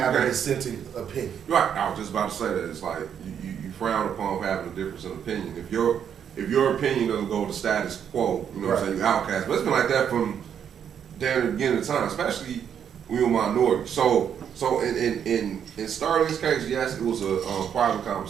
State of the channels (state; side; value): quieter; left; 8.4 dB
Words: a dissenting opinion? Right, I was just about to say that. It's like you frown upon having a difference in opinion. If your opinion doesn't go with the status quo, you know what I'm saying, you outcast. But it's been like that from damn the beginning of time, especially when we were minority. So in Sterling's case, yes, it was a private